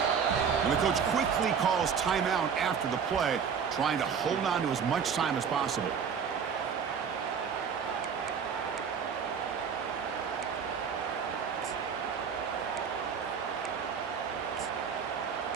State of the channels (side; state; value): left; quieter; 6.8 dB